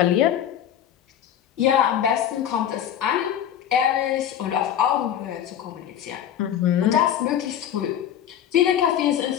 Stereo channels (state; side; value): quieter; right; 10.1 dB